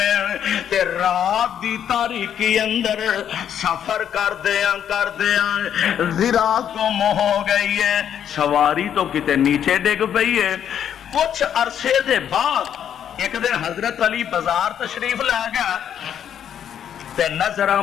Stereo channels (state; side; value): quieter; right; 9.3 dB